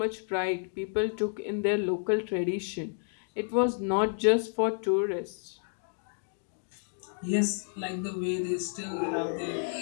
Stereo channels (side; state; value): right; silent; digital silence